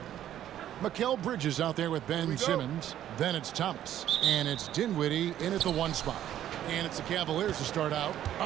Mikal Bridges out there with Ben Simmons. Then it's Thomas. And it's Dinwiddie in at the 1 spot. And it's the Cavaliers to start out.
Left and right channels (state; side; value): quieter; left; 11.6 dB